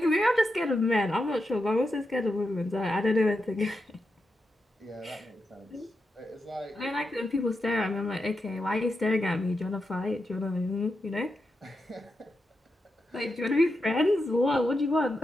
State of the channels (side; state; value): both; normal; correlation 0.87